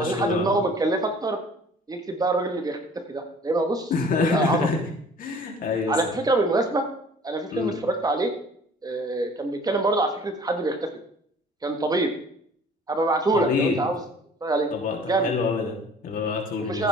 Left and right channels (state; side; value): normal; both; correlation 0.50